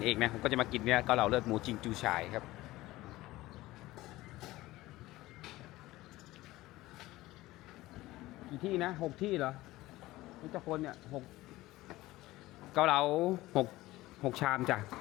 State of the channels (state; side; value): quieter; right; 17.9 dB